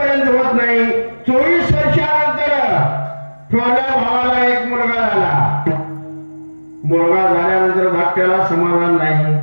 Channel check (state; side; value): inverted; both; correlation -1.00